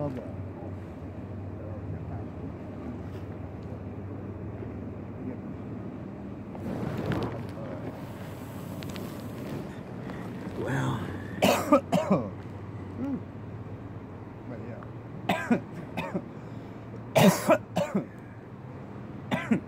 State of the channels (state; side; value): identical; both; correlation 1.00